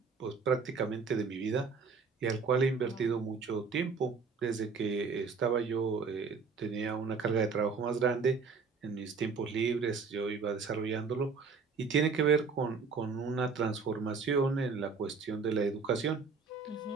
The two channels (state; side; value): quieter; left; 5.1 dB